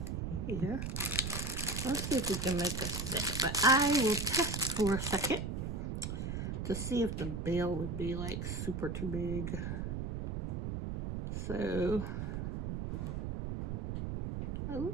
here. Let's see if we can make a set. But I will test for a second to see if the bail would be like super too big. So it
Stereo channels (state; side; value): noise; right; rumble, 3 dB below the sound